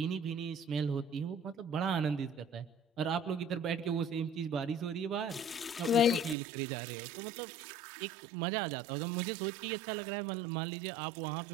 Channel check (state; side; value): drops out; left; at 6.4 s